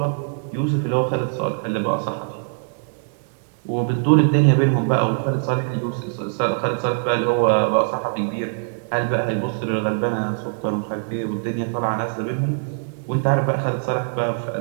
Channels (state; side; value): silent; left; digital silence